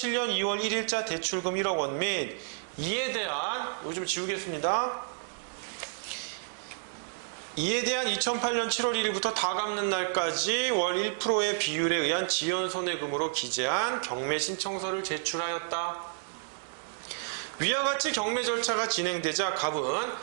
2월 1일자 대출금 1억 원 및 이에 대한, 이거 좀 지우겠습니다. 이에 대한 2008년 7월 1일부터 다 갚는 날까지 월 1%의 비율에 의한 지연손해금으로 기재한 경매 신청서를 제출하였다. 위와 같이 경매 절차가 진행되자 갑은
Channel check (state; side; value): silent; left; digital silence